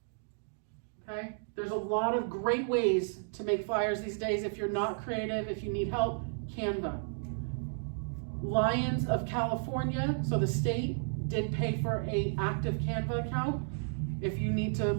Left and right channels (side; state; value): left; silent; digital silence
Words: Okay? There's a lot of great ways to make flyers these days. If you're not creative, if you need help, Canva. Lions of California, so the state, did pay for an active Canva account. If you need to